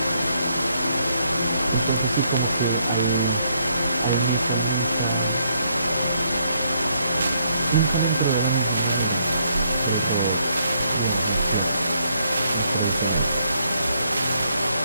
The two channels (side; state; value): both; inverted; correlation -0.73